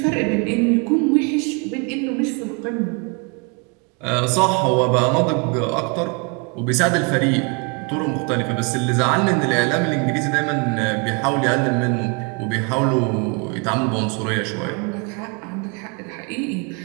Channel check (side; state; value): left; quieter; 32.6 dB